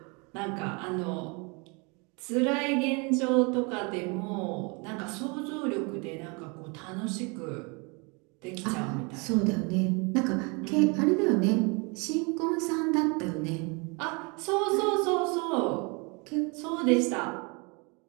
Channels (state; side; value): quieter; left; 30.9 dB